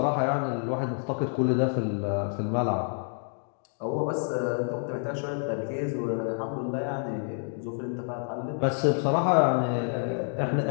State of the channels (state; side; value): silent; right; 57 dB below the other